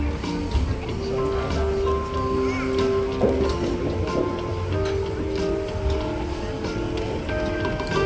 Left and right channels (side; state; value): both; identical; correlation 1.00